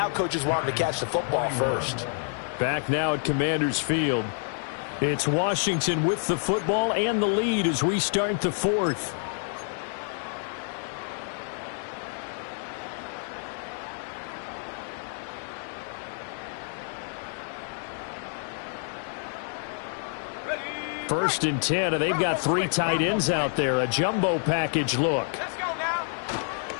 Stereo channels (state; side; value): silent; right; digital silence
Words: coaches want them to catch the football first. Back now at Commanders Field. It's Washington with the football and the lead as we start the fourth. First and 10, and they've got 3 tight ends out there. A jumbo package look. Let's go now.